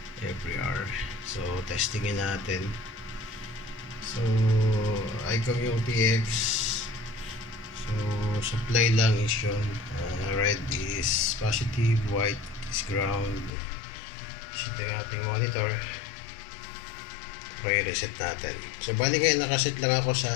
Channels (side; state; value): right; drops out; at 13.5 s